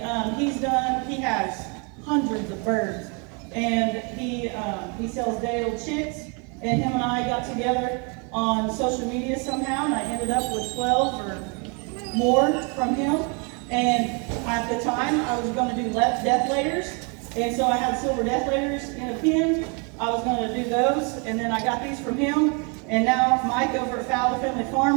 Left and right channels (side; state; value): left; quieter; 34.5 dB